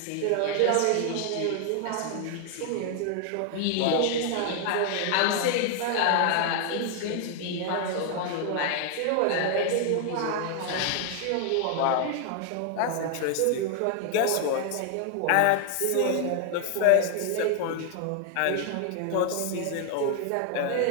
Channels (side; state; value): both; different; correlation 0.00